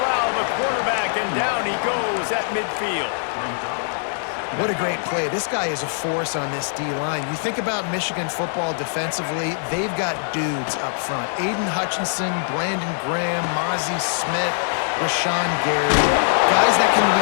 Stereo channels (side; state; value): right; silent; 60 dB below the other